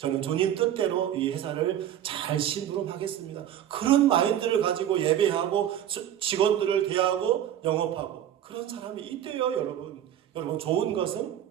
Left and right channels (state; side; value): quieter; left; 10.8 dB